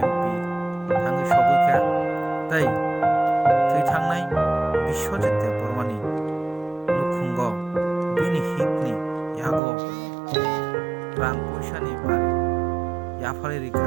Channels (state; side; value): drops out; left; at 9.6 s